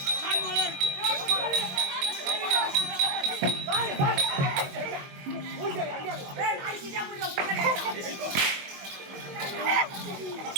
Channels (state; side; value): late; left; 22 ms